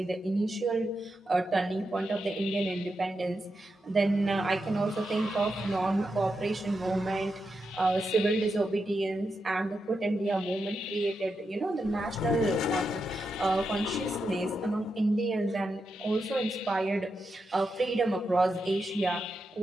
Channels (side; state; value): both; normal; correlation 0.86